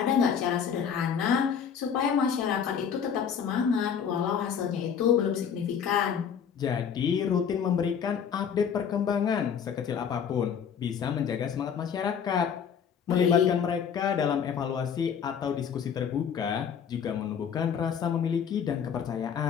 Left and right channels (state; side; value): quieter; right; 7.5 dB